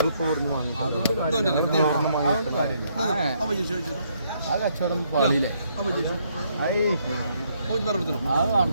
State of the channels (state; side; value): inverted; both; correlation -0.72